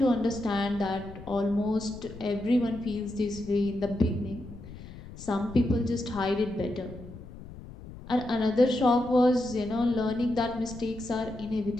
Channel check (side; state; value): left; noise; rumble, 15 dB below the sound